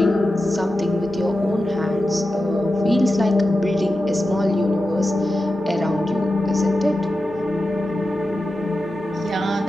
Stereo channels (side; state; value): both; normal; correlation 0.92